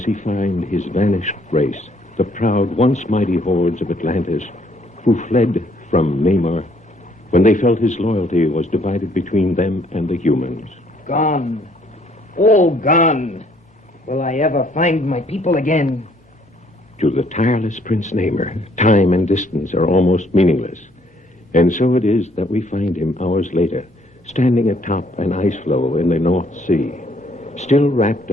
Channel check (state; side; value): normal; both; correlation 0.65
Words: he find his vanished race, the proud, once mighty hordes of Atlantis, who fled from Namor when they felt his loyalty was divided between them and the humans. Gone. All gone. Will I ever find my people again? To the tireless Prince Namor, time and distance are almost meaningless. And so it is that we find him hours later, standing atop an ice floe in the North Sea, still wrapped